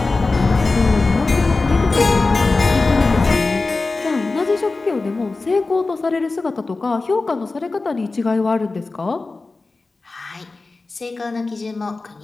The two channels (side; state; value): right; quieter; 3.6 dB